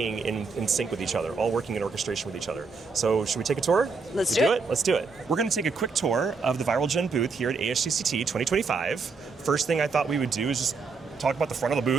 in sync with each other, all working in orchestration with each other. So should we take a tour? Let's do it. Let's do it. We're going to take a quick tour of the Viralgen booth here at ASGCT 2025. First thing I thought we would do is just talk about the front of the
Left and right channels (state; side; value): quieter; left; 4.6 dB